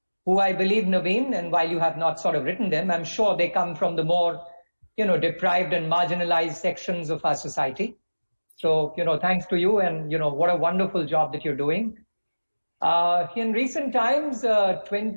who, I believe, Naveen, and while you have not sort of written them, I'm sure they come from the more, deprived and marginalized sections of our society. So, thanks to you, and, what a wonderful job that you're doing. In recent times,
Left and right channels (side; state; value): both; inverted; correlation -1.00